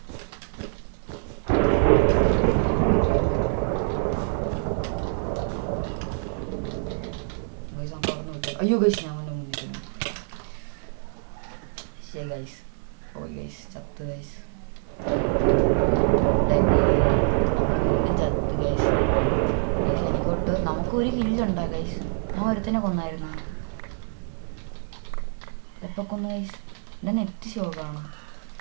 ഗൈസ് നമുക്ക് അവിടെ നിന്ന് വിട്ടു. അയ്യോ ഗൈസ് ഞാൻ അവൻ്റെ മുന്നിൽ ശരി ഗൈസ്. പോയി ഗൈസ്, ചത്ത് ഗൈസ്. നമ്മൾ വീണ്ടും ചത്ത് ഗൈസ്. എനിക്കൊട്ട് നമുക്കൊരു കില്ലുണ്ടാ ഗൈസ്. ഞാൻ ഒരുത്തനെ കൊന്നായിരുന്നു. എപ്പോൾ കൊന്നു ഗൈസ്? എൻ്റെ നെറ്റ് ഷോക്കാണ്.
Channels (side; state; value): left; silent; digital silence